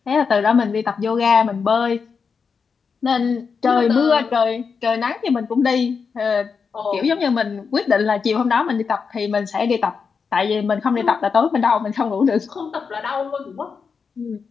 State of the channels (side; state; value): right; quieter; 5.6 dB